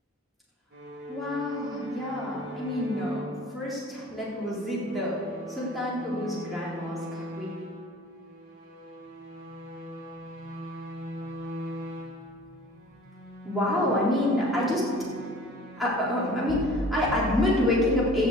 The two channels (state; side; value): normal; both; correlation 0.47